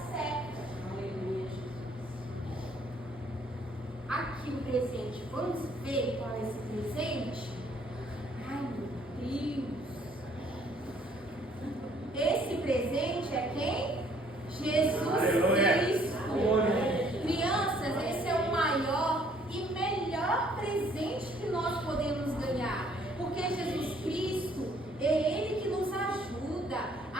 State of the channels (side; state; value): both; normal; correlation 0.62